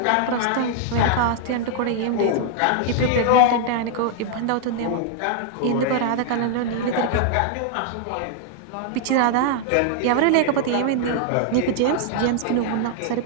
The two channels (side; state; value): both; different; correlation 0.00